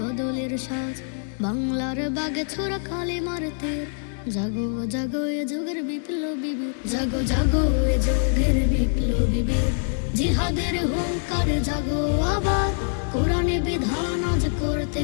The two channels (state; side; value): silent; right; digital silence